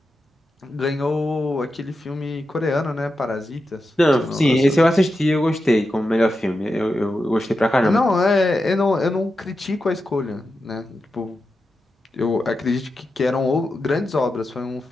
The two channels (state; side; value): normal; both; correlation 0.89